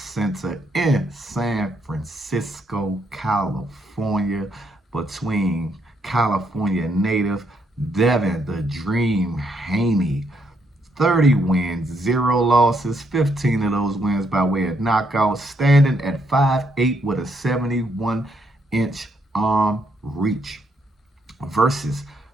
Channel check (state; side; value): normal; both; correlation 0.74